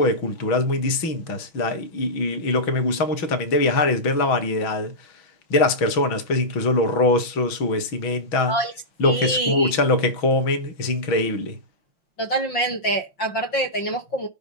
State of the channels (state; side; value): late; right; 6.2 ms